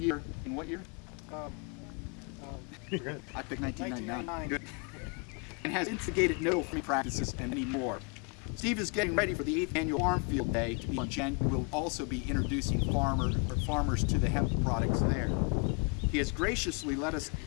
in what year? I picked 1999. Good. And has instigated no farming practices and many more. Steve is getting ready for the 8th annual Farm Field Day to be on Jan. We will also be introducing farmers to the hemp products there. He has graciously let us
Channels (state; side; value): quieter; right; 33.7 dB